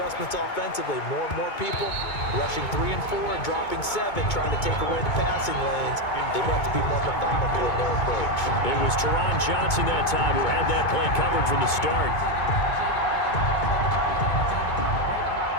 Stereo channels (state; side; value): late; right; 2.2 ms